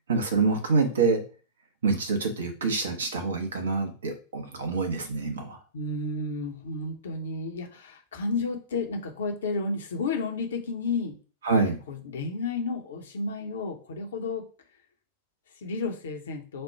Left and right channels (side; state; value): both; inverted; correlation -0.40